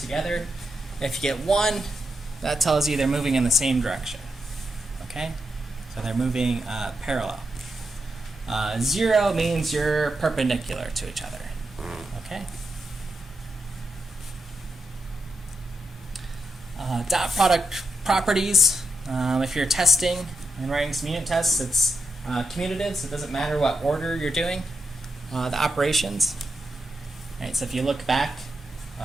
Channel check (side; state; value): both; normal; correlation 0.85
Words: if you get 1, that tells you they're moving in the same direction. Okay? So they're moving parallel. 0 means you're perpendicular to each other. Okay? Dot product properties. If you're testing and writing some unit tests, it's commutative, so it doesn't matter what order you're doing the operations. Right, so if you look back,